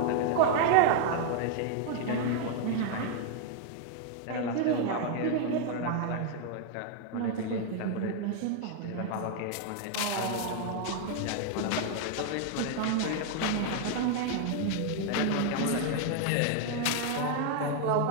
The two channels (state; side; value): different; both; correlation 0.00